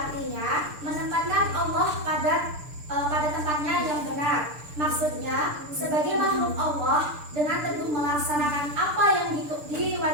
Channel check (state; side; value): late; left; 6.8 ms